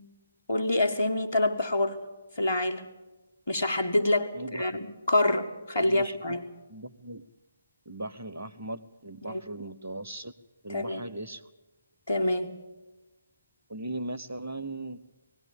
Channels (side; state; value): both; inverted; correlation -0.83